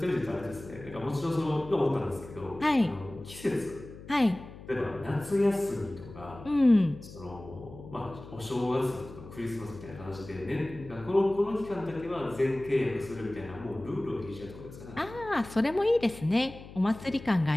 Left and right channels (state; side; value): noise; left; hum, 16 dB below the sound